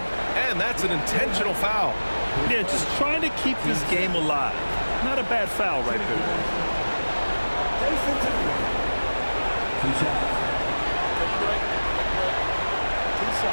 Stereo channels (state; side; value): inverted; both; correlation -1.00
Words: And that's an intentional foul. Yeah, just trying to keep this game alive. Not a bad foul right there. 2 shots.